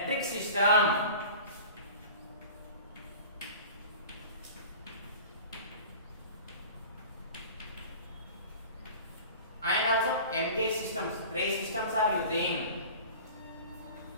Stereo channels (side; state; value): both; inverted; correlation -0.39